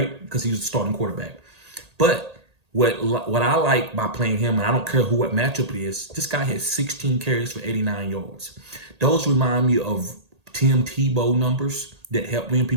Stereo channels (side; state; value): left; late; 1.8 ms